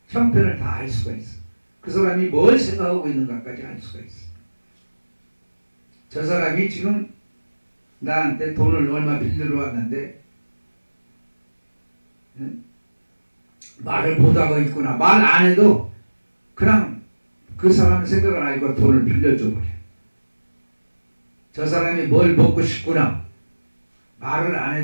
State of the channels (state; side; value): inverted; both; correlation -1.00